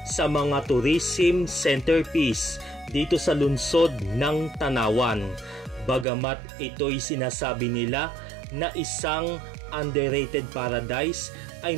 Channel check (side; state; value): left; drops out; at 6.1 s